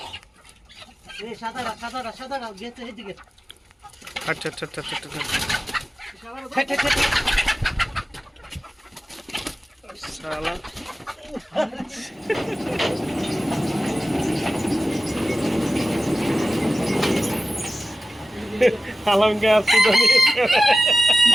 আচ্ছা আচ্ছা আচ্ছা আচ্ছা শালা আলমকে আসছি তো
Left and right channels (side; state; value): both; normal; correlation 0.95